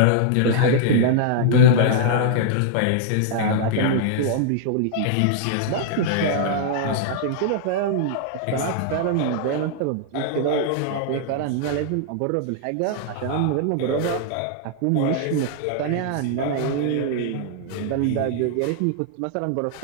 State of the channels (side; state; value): both; different; correlation -0.01